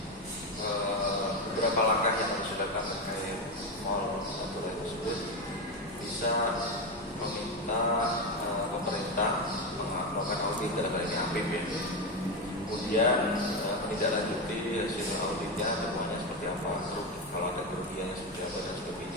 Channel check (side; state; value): both; normal; correlation 0.11